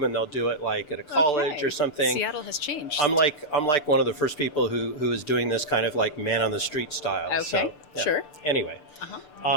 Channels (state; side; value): late; right; 6.8 ms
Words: and they'll do it like at a college or something. Seattle has changed. I'm like one of the first people who is doing this kind of like man on the street style. Okay, So, yeah. sure. Anyway,